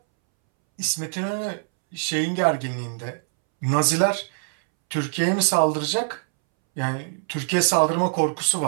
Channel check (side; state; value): left; silent; 63 dB below the other